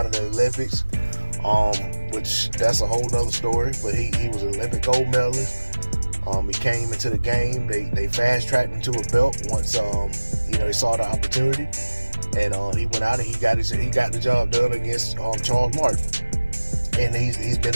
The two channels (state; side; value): inverted; both; correlation -1.00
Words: of the Olympics, which that's a whole nother story. But he was an Olympic gold medalist. He came into the game. They fast-tracked him to a belt once he saw the opportunity, and he went out and he got the job done against Charles Martin, and he's been